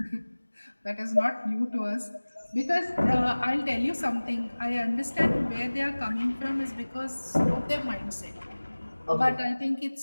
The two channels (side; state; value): both; inverted; correlation -1.00